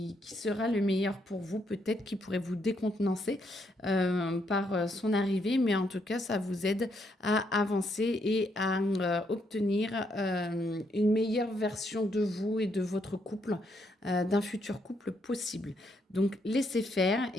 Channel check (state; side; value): normal; both; correlation 0.75